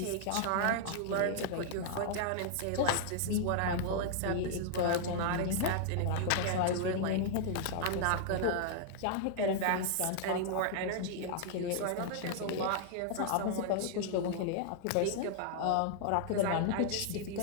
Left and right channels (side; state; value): both; different; correlation -0.01